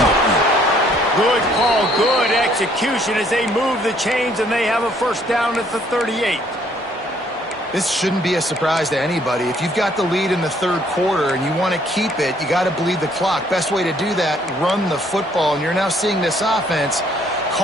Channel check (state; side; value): normal; both; correlation 0.64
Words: Good call, good execution as they move the chains, and they have a 1st down at the 38. This shouldn't be a surprise to anybody. If you've got the lead in the 3rd quarter and you want to keep it, you got to bleed the clock. Best way to do that, run the football. And you're now seeing this offense